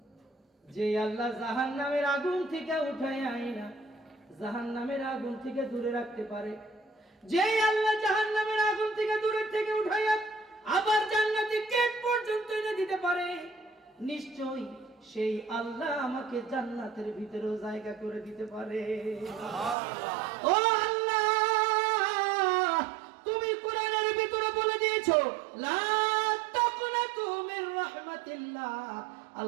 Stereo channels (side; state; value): left; drops out; at 19.8 s